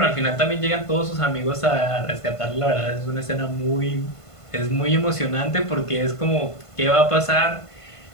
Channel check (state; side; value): late; right; 1.5 ms